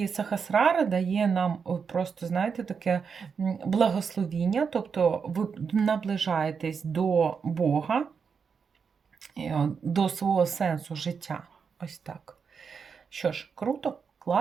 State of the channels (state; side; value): quieter; left; 6.0 dB